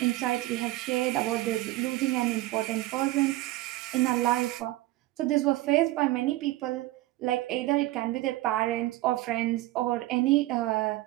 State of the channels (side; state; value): left; quieter; 17.4 dB